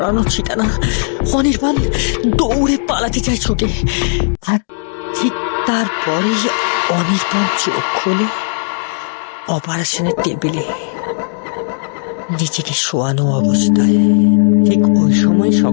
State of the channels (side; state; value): right; silent; 66 dB below the other